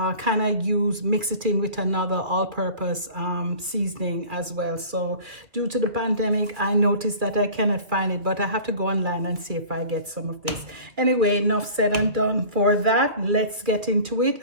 kind of mix it in with another all-purpose seasoning as well. So due to the pandemic, I noticed that I cannot find it, but I have to go online and see if I get some of this. Anyway, enough said and done for that. Let's get into it.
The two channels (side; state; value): left; late; 2.2 ms